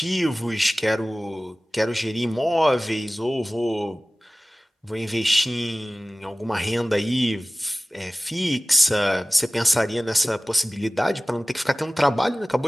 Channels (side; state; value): both; normal; correlation 0.98